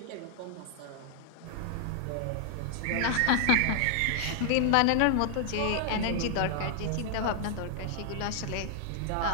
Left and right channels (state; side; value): different; both; correlation 0.00